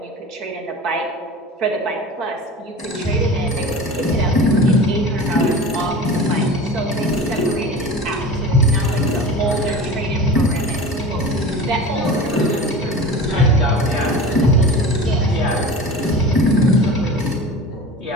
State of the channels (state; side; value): normal; both; correlation 0.34